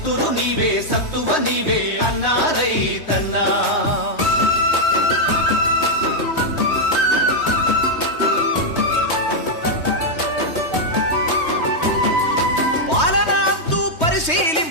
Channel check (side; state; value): right; late; 3.2 ms